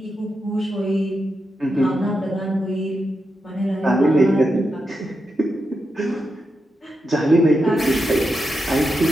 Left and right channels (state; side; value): normal; both; correlation 0.87